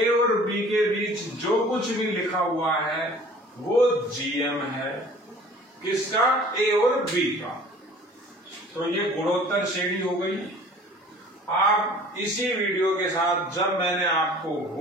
और बी के बीच जो कुछ भी लिखा हुआ है वो जीएम है, किसका, ए और बी का। तो ये गुणोत्तर श्रेणी हो गई। आप इसी वीडियो के साथ, जब मैंने आपको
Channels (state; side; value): normal; both; correlation 0.48